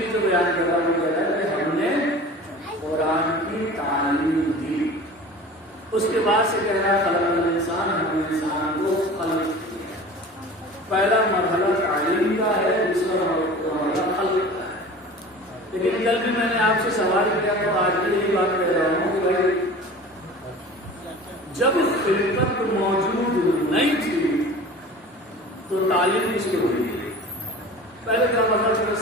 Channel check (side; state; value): both; normal; correlation 0.39